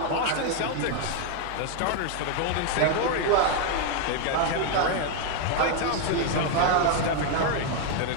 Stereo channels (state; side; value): different; both; correlation 0.01